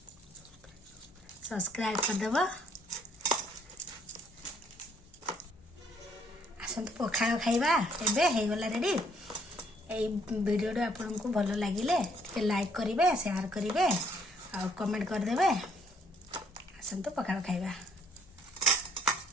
ସବସ୍କ୍ରାଇବ କରିଦେବ। ଆସନ୍ତୁ ପଖାଳ ଖାଇବା। ଏବେ ହେଇଗଲା ରେଡ଼ି। এই ভিডিওটা ଆପଣଙ୍କୁ ଭଲ ଲାଗିଲେ ଟିକେ ଲାଇକ୍ କରିବେ, ସେୟାର କରିବେ ଆଉ କମେଣ୍ଟ କରିଦେବେ। ଆସନ୍ତୁ ପଖାଳ ଖାଇବା।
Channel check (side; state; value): both; normal; correlation 0.66